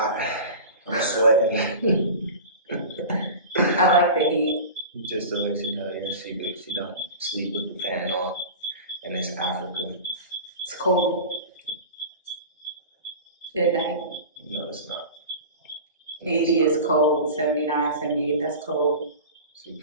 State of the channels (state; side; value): inverted; both; correlation -0.34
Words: I'm sweating. I like the heat. Just to let you know, yeah, she don't sleep with the fan on, and it's Africa. It's cold. Good night. No, it's not. 80 is cold, 79, 78, that's cold. She